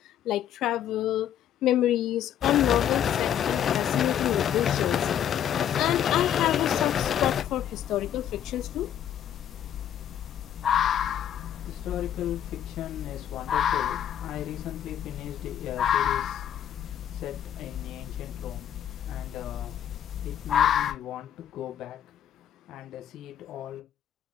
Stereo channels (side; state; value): right; quieter; 10.1 dB